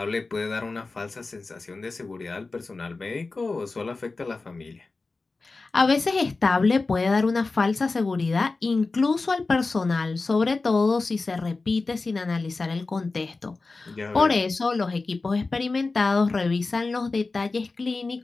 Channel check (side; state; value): right; quieter; 3.7 dB